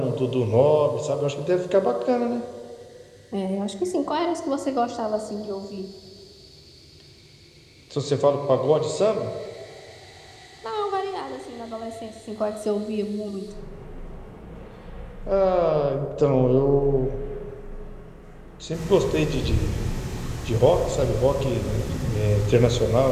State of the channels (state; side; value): identical; both; correlation 1.00